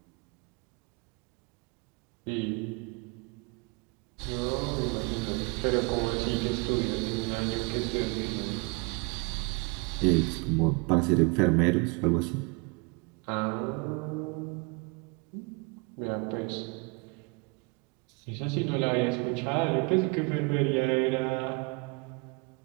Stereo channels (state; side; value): quieter; left; 29.9 dB